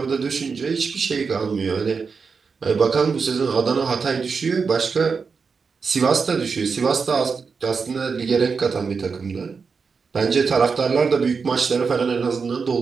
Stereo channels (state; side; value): quieter; left; 5.2 dB